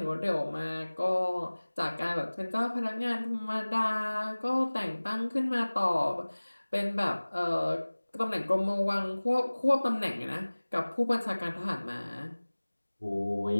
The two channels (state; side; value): inverted; both; correlation -1.00